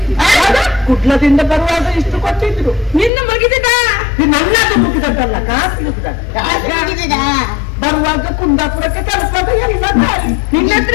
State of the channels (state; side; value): drops out; right; at 3.1 s